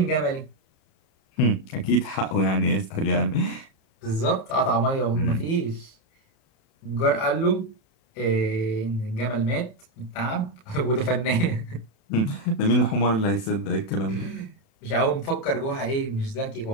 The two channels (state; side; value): late; right; 36 ms